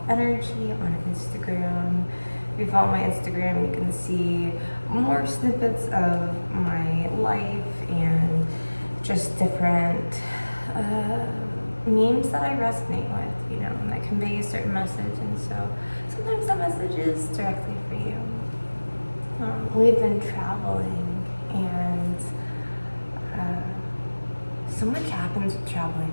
on Instagram. If you follow my Instagram, you can see more snippets of my life and just different memes that I resonate with, and that convey a certain message. And so sometimes that message is directly for you. We've been traveling and so much happens with traveling,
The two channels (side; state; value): both; inverted; correlation -1.00